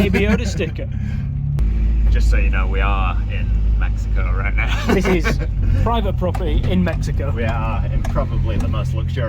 Yoda sticker. Just so you know, we are in Mexico right now. This is private property in Mexico. We are in probably the most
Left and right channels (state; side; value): identical; both; correlation 1.00